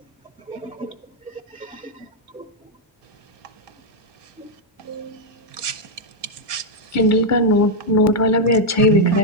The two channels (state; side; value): normal; both; correlation 0.00